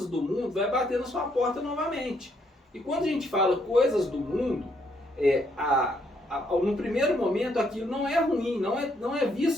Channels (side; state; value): both; normal; correlation 0.72